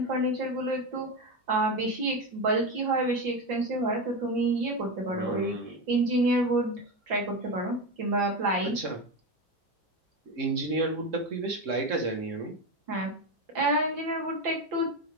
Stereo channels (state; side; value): normal; both; correlation 0.16